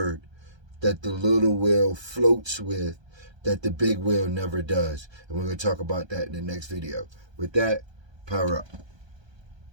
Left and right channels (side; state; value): left; late; 1.3 ms